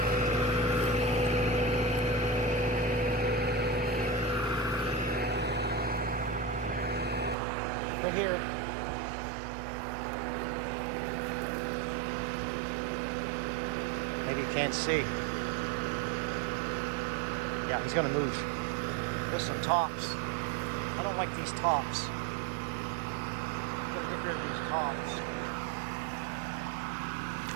Right here. Maybe you can't see. Yeah, he's gonna move. There's some tops. I don't like these tops. I'm gonna get rid of these tops.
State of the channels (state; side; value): drops out; left; at 7.4 s